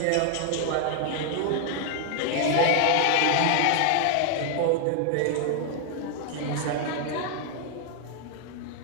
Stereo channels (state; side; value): different; both; correlation 0.00